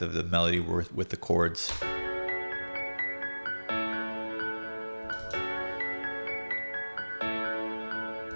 of the melody with the chords.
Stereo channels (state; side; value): inverted; both; correlation -1.00